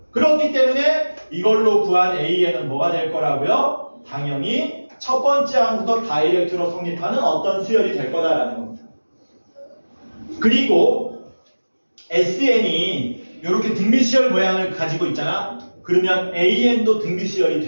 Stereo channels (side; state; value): both; inverted; correlation -1.00